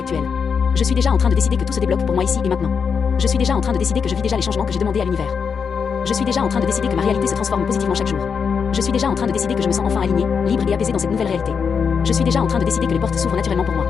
Je suis déjà en train de décider que tout se débloque pour moi ici et maintenant. Je suis déjà en train de décider que je vis déjà les changements que j'ai demandés à l'univers. Je suis déjà en train de décider que ma réalité se transforme positivement chaque jour. Je suis déjà en train de décider que je me sens enfin aligné, libre et apaisé dans cette nouvelle réalité. Je suis déjà en train de décider que les portes s'ouvrent naturellement pour moi.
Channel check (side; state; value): right; quieter; 6.3 dB